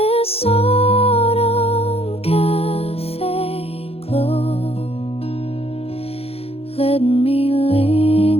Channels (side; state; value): right; late; 0.29 ms